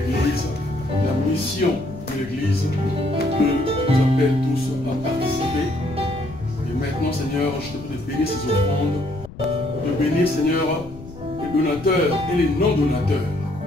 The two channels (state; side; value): noise; left; rumble, 16 dB below the sound